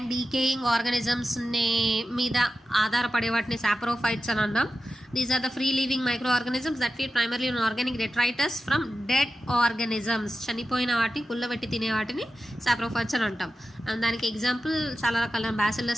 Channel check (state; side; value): normal; both; correlation 0.92